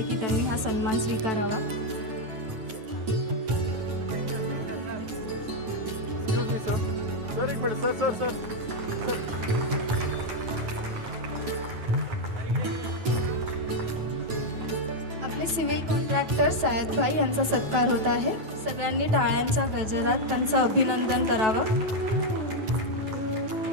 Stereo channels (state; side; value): late; left; 9.2 ms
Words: की त्यांनी हा सन्मान स्वीकारावा. सर एक मिनिट. सर आपले सिव्हिल कॉन्ट्रॅक्टर सय्यद भाई यांचा सत्कार होत आहे. सगळ्यांनी टाळ्यांच्या गजरात त्यांचं अभिनंदन करावं.